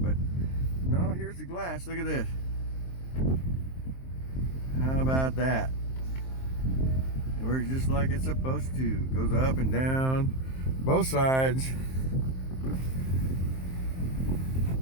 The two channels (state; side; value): late; right; 23 ms